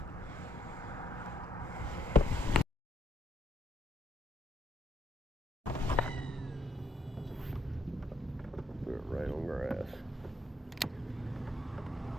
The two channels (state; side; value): normal; both; correlation 0.73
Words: Threw it right on grass.